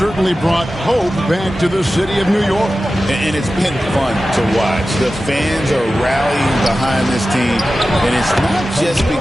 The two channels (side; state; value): both; normal; correlation 0.94